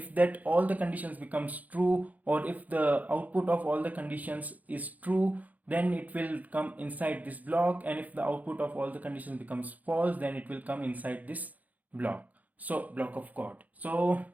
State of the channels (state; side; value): late; left; 0.078 ms